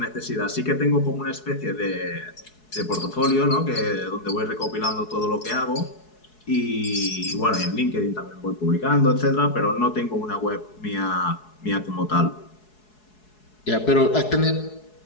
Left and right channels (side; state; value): right; late; 4.7 ms